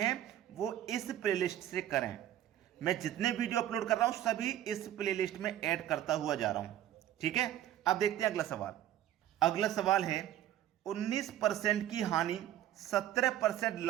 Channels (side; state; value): left; quieter; 12.3 dB